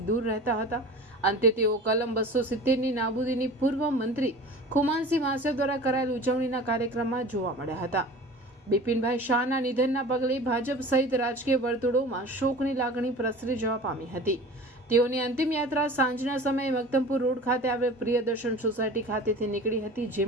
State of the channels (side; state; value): both; normal; correlation 0.39